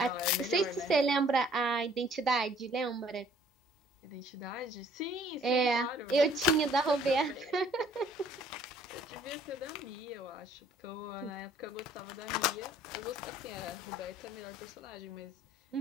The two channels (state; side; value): normal; both; correlation 0.59